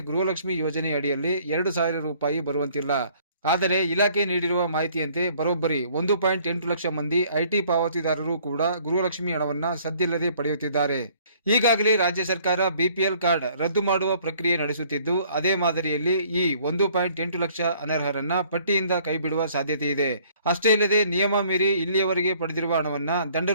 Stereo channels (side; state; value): both; inverted; correlation -0.59